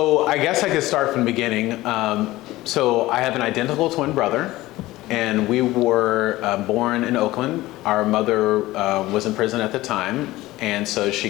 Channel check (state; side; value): quieter; right; 17.7 dB